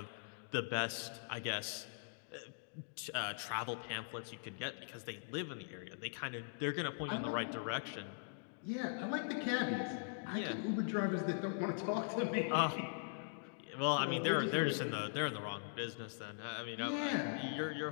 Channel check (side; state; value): right; silent; digital silence